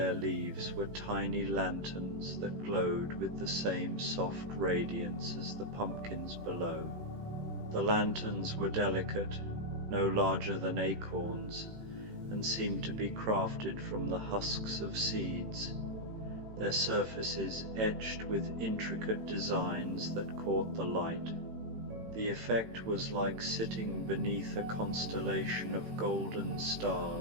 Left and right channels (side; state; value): left; late; 18 ms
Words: leaves were tiny lanterns that glowed with the same soft radiance as the pumpkins below. The lanterns were delicate, no larger than acorns, and seemed to be crafted from the husks of seeds, their surfaces etched with intricate designs that caught the light. The effect was like sitting beneath a constellation of golden